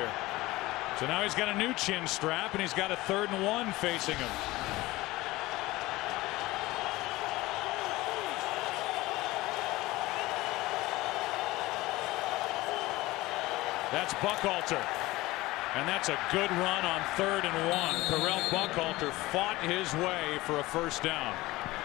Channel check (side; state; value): right; quieter; 19.2 dB